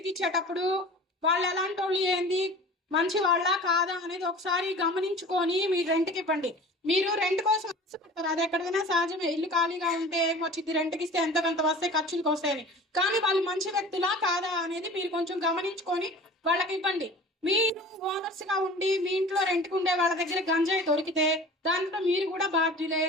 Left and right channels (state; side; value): normal; both; correlation 0.41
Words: ఇచ్చేటప్పుడు వాళ్ళు ఎలాంటి వాళ్ళు, ఏంది, మంచి వాళ్ళ కాదా అనేది ఒకసారి గమనించుకొని మీరు రెంట్కి ఇవ్వండి. మీరు రెంట్ కోసం ఆశపడతారు, అది ఎక్కడైనా సహజమే. ఇల్లు ఖాళీగా ఉంటే వచ్చింది, రెంట్కి ఇస్తే ఎంత కొంత వస్తాయి, ఖర్చులకు వస్తాయని. కానీ వాళ్ళు మంచి వ్యక్తులా కాదా అనేది మీరు కొంచెం గమనించుకొని వాళ్ళకి ఇవ్వండి. మీరు ఓనర్స్ గా ఉండి మీ ఇంట్లో రెంట్కి ఉండే వాళ్ళ దగ్గర గంజాయి దొరికితే దాంట్లో మీరు కూడా బాధ్యులే.